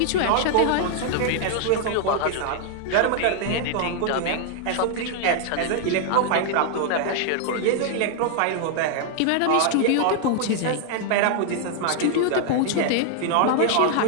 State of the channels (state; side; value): different; both; correlation 0.00